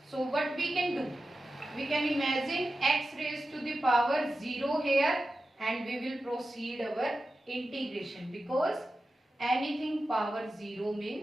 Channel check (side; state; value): both; normal; correlation 0.93